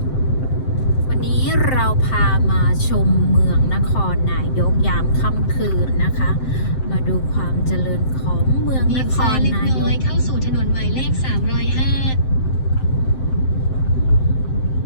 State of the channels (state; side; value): late; right; 7.7 ms